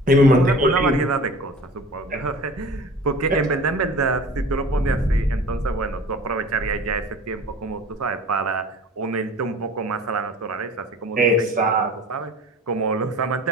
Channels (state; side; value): normal; both; correlation 0.42